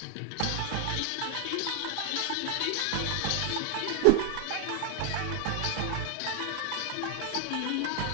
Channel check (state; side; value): different; both; correlation 0.00